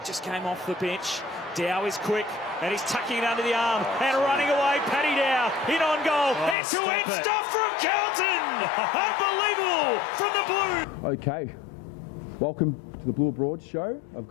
just came off the bench. Dow is quick, and he's tucking it under the arm, and running away, Paddy Dow, in on goal, end-to-end stuff from Carlton! Unbelievable from the Blues! Okay, welcome to the Blue Abroad show. I've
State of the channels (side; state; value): right; drops out; at 6.6 s